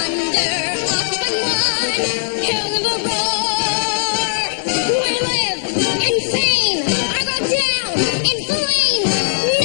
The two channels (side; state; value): right; silent; digital silence